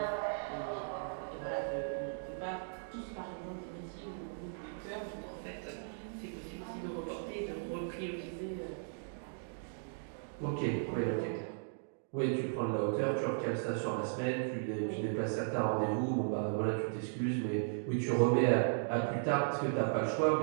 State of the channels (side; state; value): left; silent; digital silence